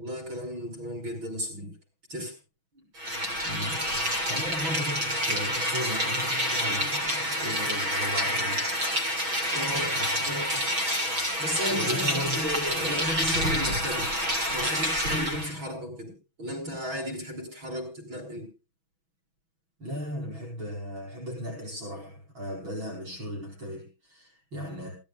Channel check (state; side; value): late; left; 6.2 ms